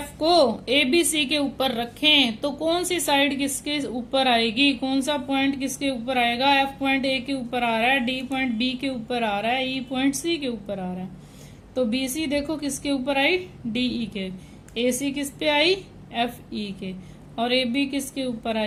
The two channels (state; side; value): identical; both; correlation 1.00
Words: को ABC के ऊपर रखें तो कौन सी साइड किसके ऊपर आएगी, कौन सा पॉइंट किसके ऊपर आएगा। F पॉइंट A के ऊपर आ रहा है, D पॉइंट B के ऊपर आ रहा है, E पॉइंट C के ऊपर आ रहा है। तो BC देखो किसके ऊपर आई, DE के। AC किस पे आई, FE के। और AB किसके ऊपर